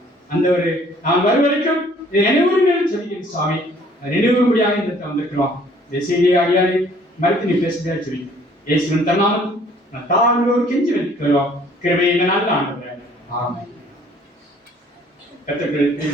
அந்த ஒரு நான் வரும் வரைக்கும் நினைவுகள் சொல்லிக்கிறேன் சுவாமி. நினைவுபடியாக இந்த வந்திருக்கிறோம். இந்த செய்தியை அடியாரை மறுத்து நீ பேசுகிறா சொல்லி இயேசுவின் தன்னாலும் நான் தாழ்வோர் கெஞ்சி வைக்கிறோம். கிருபையை இந்த நாள் ஆண்டவர். ஆமென். கர்த்தருக்கு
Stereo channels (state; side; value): normal; both; correlation 0.57